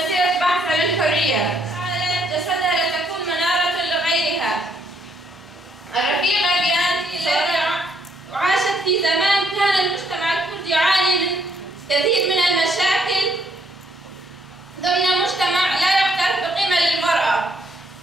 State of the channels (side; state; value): both; normal; correlation 0.70